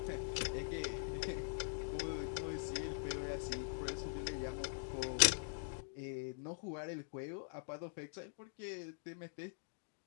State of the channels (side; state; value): right; silent; digital silence